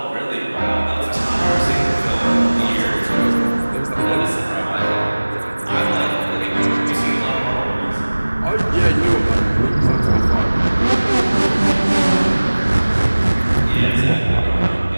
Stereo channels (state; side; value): inverted; both; correlation -1.00